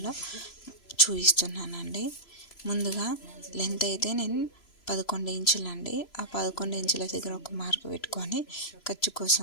చూపిస్తున్నానండి. ముందుగా లెంత్ అయితే నేను 11 ఇంచులు అండి. ఆ 11 ఇంచుల దగ్గర ఒక మార్క్ పెట్టుకొని ఖర్చు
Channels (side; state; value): right; late; 3.0 ms